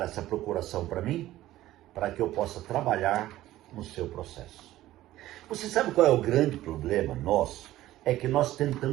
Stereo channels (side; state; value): left; quieter; 15.0 dB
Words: essa procuração para mim, para que eu possa trabalhar no seu processo. Você sabe qual é o grande problema nosso? É que nós